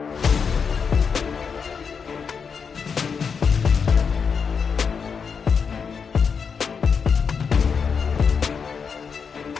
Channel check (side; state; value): right; quieter; 6.1 dB